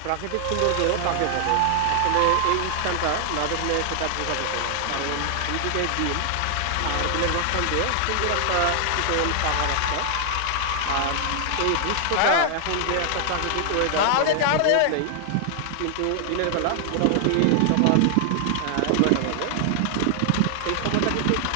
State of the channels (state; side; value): different; both; correlation 0.00